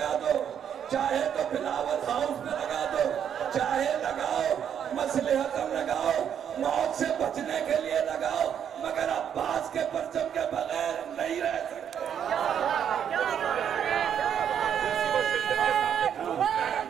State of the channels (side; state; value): left; quieter; 8.7 dB